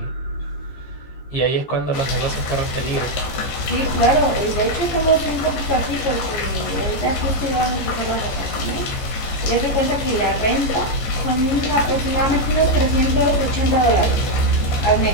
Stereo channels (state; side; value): late; right; 15 ms